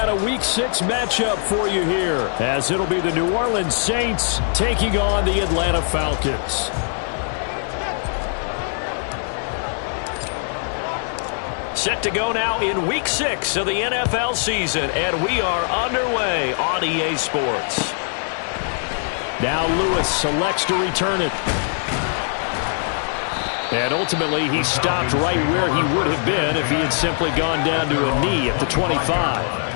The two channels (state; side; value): silent; right; digital silence